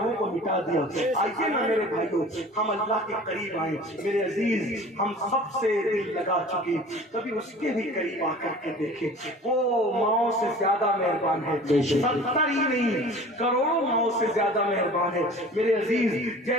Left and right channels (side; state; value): both; normal; correlation 0.43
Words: کو مٹا دیا۔ آئیے نا میرے بھائیوں، ہم اللہ کے قریب آئیں۔ میرے عزیز، ہم سب سے دل لگا چکے، کبھی اس کے بھی قریب آ کر کے دیکھیں، وہ ماؤں سے زیادہ مہربان ہے، 70 ہی نہیں کروڑوں ماؤں سے زیادہ مہربان ہے۔ میرے عزیز،